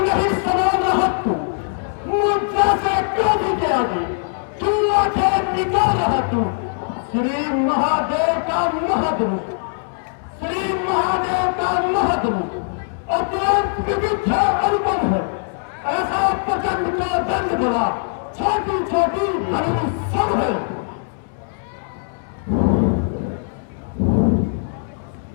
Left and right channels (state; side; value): silent; right; digital silence